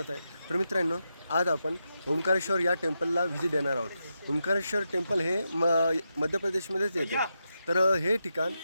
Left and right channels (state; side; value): inverted; both; correlation -0.87